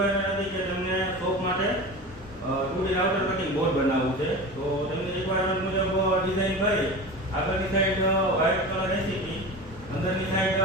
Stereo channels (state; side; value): normal; both; correlation 0.31